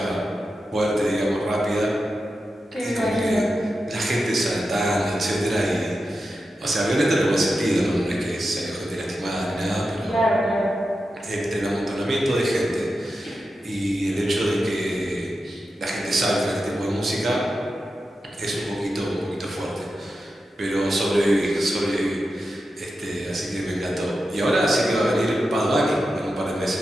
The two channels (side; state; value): both; normal; correlation 0.90